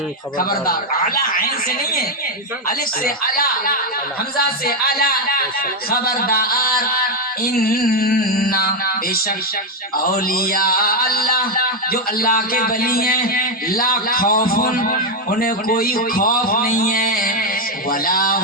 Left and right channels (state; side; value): normal; both; correlation 0.04